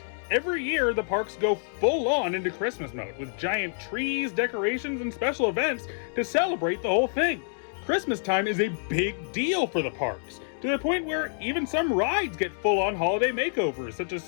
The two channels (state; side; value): silent; right; 60 dB below the other